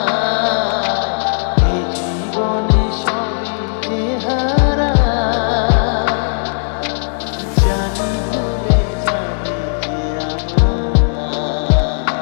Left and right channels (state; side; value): silent; right; digital silence